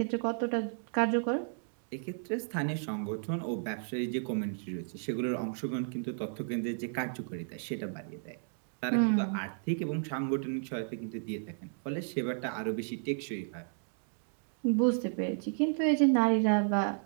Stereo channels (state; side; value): silent; left; digital silence